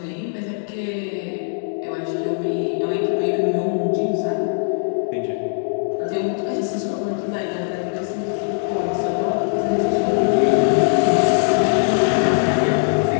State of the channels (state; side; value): silent; right; digital silence